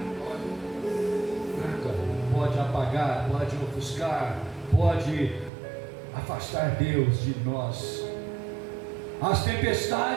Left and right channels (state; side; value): drops out; left; at 5.5 s